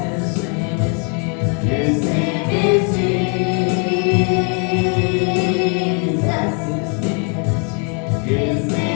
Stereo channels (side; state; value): right; quieter; 38.6 dB